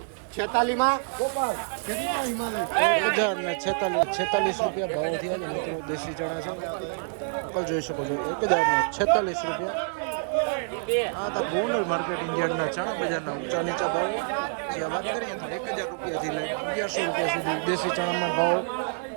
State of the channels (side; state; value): left; silent; 60 dB below the other